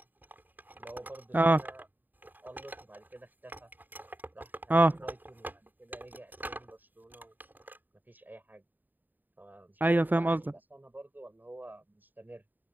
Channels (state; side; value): late; left; 0.089 ms